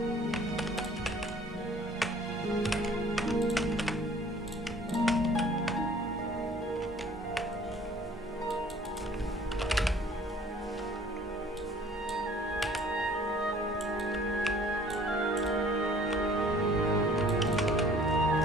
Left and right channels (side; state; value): both; normal; correlation 0.53